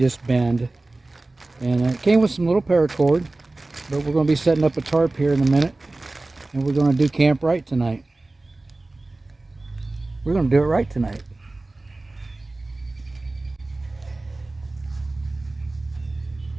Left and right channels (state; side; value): quieter; left; 3.0 dB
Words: bend. And it came with some little paracord, but we're going to be setting up a tarp here in a minute, and we're going to do camp right tonight. We're going to do it right tonight.